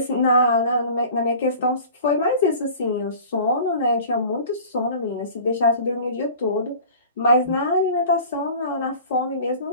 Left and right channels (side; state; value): both; inverted; correlation -0.42